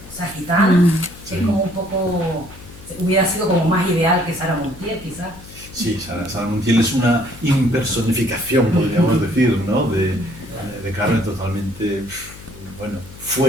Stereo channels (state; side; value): noise; left; hum, 18 dB below the sound